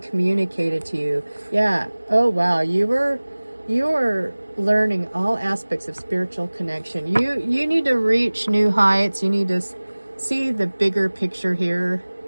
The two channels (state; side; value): inverted; both; correlation -1.00